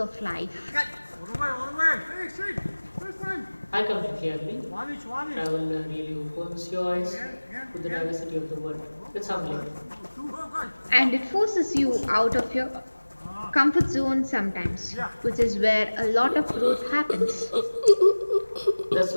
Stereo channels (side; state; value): both; inverted; correlation -1.00